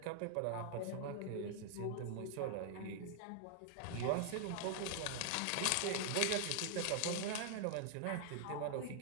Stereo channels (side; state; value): both; different; correlation 0.00